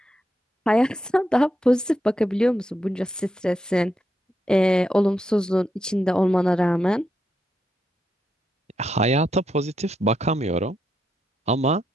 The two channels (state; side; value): normal; both; correlation 0.82